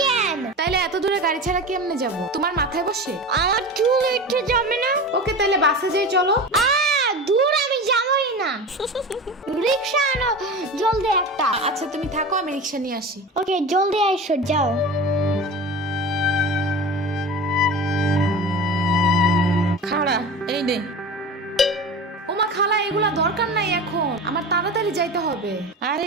কেন? তাইলে এত দূরে গাড়ি ছাড়া কেমনে যাব? তোমার মাথায় বসে? আমার চুল উঠে যাবে না? ওকে, তাইলে বাসে যাই চলো। দূর, আমি যাবই না। রিক্সা আনো জলদি একটা। আচ্ছা তুমি থাকো, আমি রিক্সা নিয়ে আসি। ওকে, জলদি আইসো, যাও। খাড়া, এই নে। ওমা খালা, এগুলা দরকার নাই এখন, আমার তাড়াতাড়ি যাইতে হবে। আরে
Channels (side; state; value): both; normal; correlation 0.31